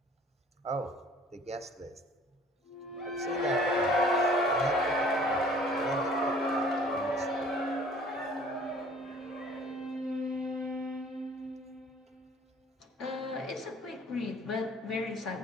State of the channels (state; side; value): normal; both; correlation 0.53